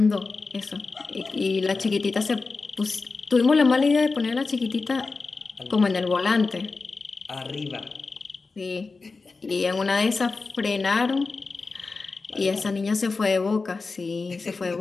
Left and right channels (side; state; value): right; quieter; 4.1 dB